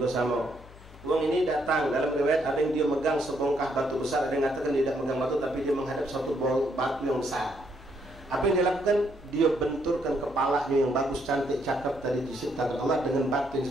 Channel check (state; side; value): normal; both; correlation 0.73